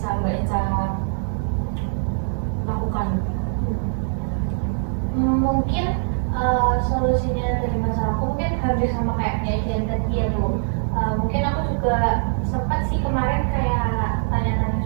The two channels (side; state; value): left; silent; 56 dB below the other